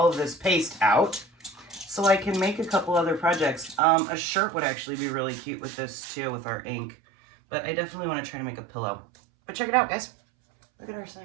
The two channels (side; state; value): left; drops out; at 3.8 s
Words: of this paste out so I can make a couple other projects. A shirt would actually be really cute with this too, with our ink. But I definitely want to try to make a pillow. But check it out, guys. Look at our